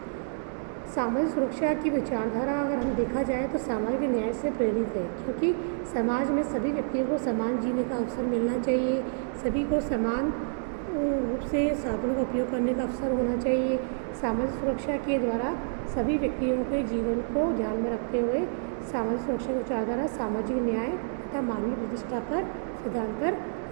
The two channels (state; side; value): silent; left; digital silence